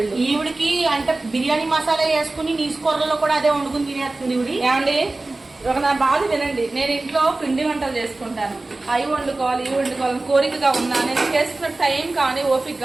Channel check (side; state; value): left; quieter; 3.1 dB